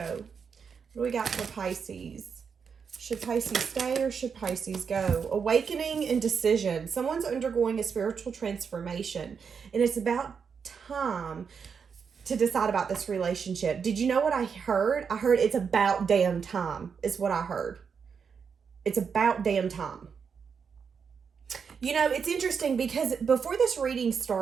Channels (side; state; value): left; quieter; 6.3 dB